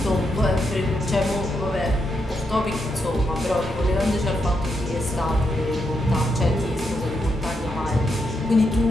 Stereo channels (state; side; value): normal; both; correlation 0.82